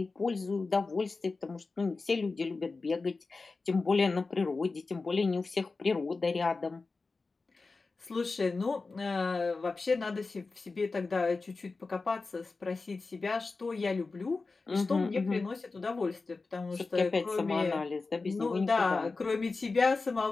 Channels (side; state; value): right; quieter; 3.9 dB